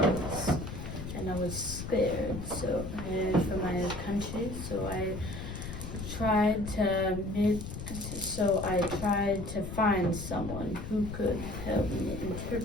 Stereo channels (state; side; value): noise; left; rumble, 8 dB below the sound